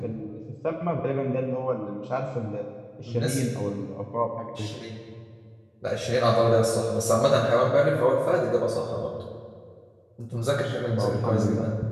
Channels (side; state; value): both; identical; correlation 1.00